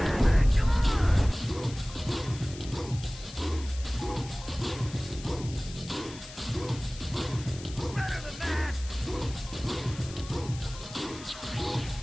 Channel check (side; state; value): left; noise; hiss, 15 dB below the sound